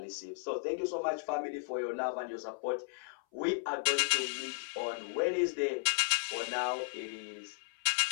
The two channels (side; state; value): right; silent; 54 dB below the other